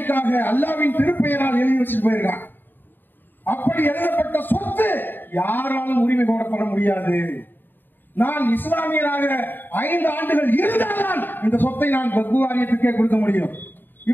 அல்லாவின் திருப்பெயரால் எழுதி வச்சுட்டு போயிருக்காங்க. அப்படி எழுதப்பட்ட சொத்து யாராலும் உரிமை கோரப்பட முடியாது. நான் இஸ்லாமியராக 5 ஆண்டுகள் இருந்தால்தான் இந்த சொத்தை நான் வக்ஃப் வாரியத்துக்கே கொடுக்க முடியும்.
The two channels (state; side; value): late; right; 0.093 ms